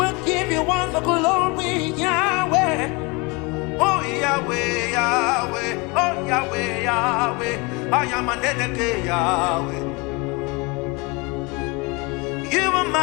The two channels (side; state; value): right; quieter; 27.7 dB